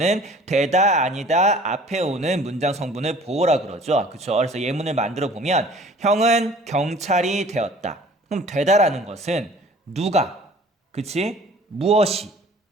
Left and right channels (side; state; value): both; normal; correlation 0.50